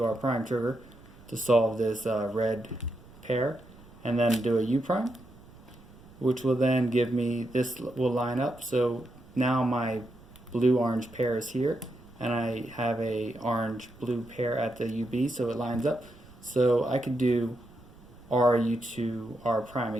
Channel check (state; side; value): noise; right; rumble, 23 dB below the sound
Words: R prime trigger to solve this red pair, and then do a U prime, which will then give me, this will line up. So now my blue-orange pair is here, and I have a orange-blue pair at the UB, so it lines up. So I could do R U2 R prime